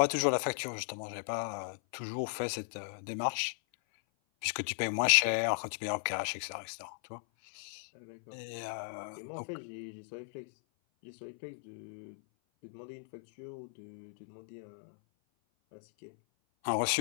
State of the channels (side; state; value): right; silent; 54 dB below the other